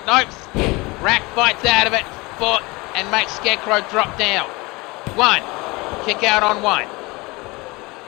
Nope. Rack fights out of it. Foot and makes Scarecrow drop down. One. Kick out on one.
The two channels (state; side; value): quieter; right; 24.2 dB